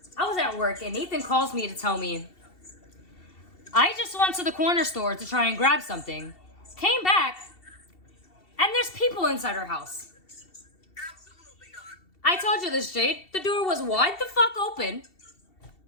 I was at work, and Nathan calls me to tell me, I just went to the corner store to try and grab something, came back, and there's people inside our house. Absolutely not. I told you this, Jade. The door was wide the fuck open.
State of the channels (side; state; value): right; late; 2.7 ms